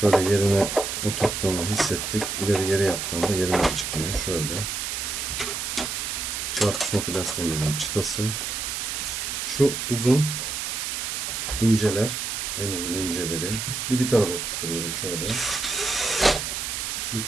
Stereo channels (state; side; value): noise; right; hiss, 3 dB below the sound